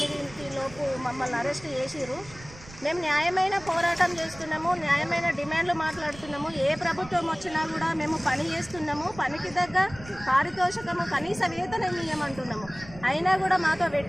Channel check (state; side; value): noise; right; rumble, 18 dB below the sound